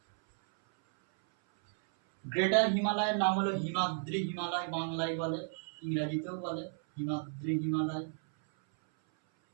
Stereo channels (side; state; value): left; silent; 55 dB below the other